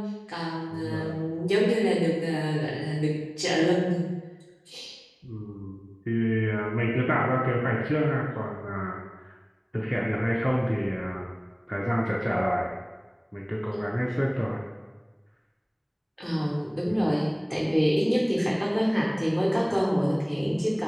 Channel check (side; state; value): both; identical; correlation 1.00